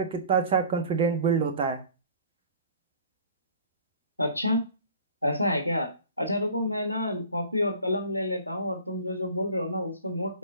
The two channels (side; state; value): both; inverted; correlation -0.46